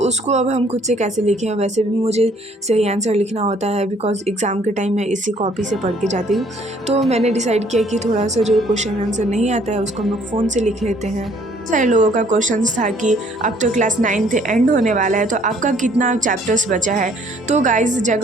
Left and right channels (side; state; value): both; normal; correlation 0.61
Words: अब हम खुद से कैसे लिखें। वैसे भी मुझे सही आंसर लिखना होता है बिकॉज एग्ज़ाम के टाइम मैं इसी कॉपी से पढ़ के जाती हूँ। तो मैंने डिसाइड किया कि थोड़ा सा जो क्वेश्चन आंसर नहीं आता है उसको हम लोग फ़ोन से लिख लेते हैं। सारे लोगों का क्वेश्चन था कि अब तो क्लास 9th एंड होने वाला है तो आपका कितना चैप्टर्स बचा है। तो गाइस